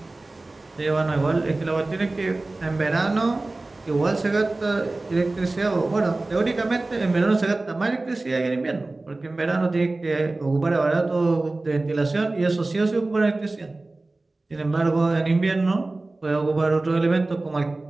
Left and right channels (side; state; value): left; quieter; 3.1 dB